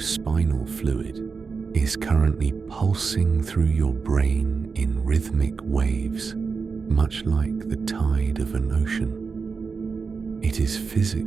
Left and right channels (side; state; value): left; quieter; 5.1 dB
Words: fluid, is currently pulsing through your brain in rhythmic waves, much like the tide of an ocean. It is